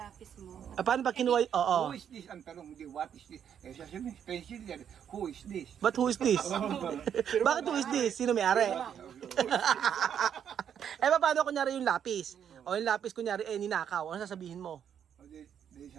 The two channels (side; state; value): left; quieter; 8.7 dB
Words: mo, Paano ba kinuha? Oo. Who is this? Ang tanong, hindi, what is this? Sasabihin, pencil yan. Who is this? But who is this? Bakit who is this? Sino may-ari? Paano kunyari yung lapis? O yung lapis kunyari, ninakaw. Ano sasabihin mo? O di